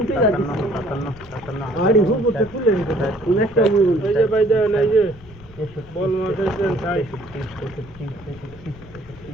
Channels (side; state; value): left; noise; rumble, 20 dB below the sound